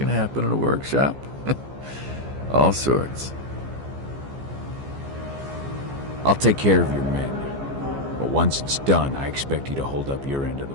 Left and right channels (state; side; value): late; left; 15 ms